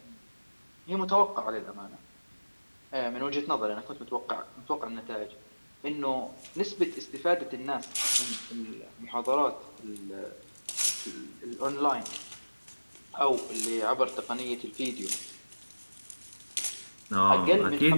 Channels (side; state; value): both; inverted; correlation -1.00